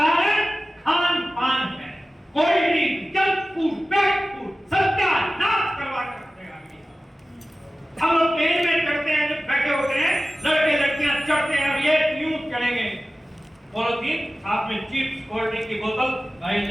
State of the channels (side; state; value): both; normal; correlation 0.96